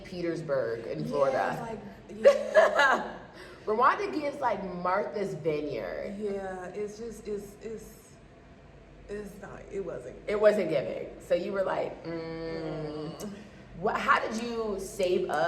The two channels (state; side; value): identical; both; correlation 1.00